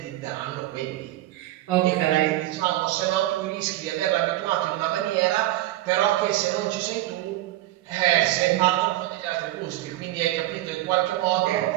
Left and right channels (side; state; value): left; quieter; 15.7 dB